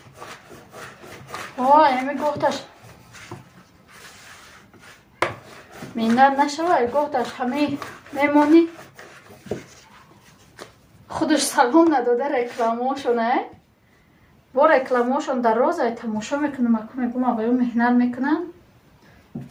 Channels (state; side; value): identical; both; correlation 1.00